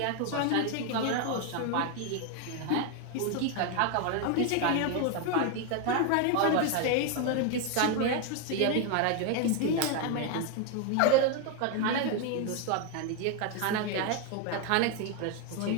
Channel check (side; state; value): both; different; correlation 0.01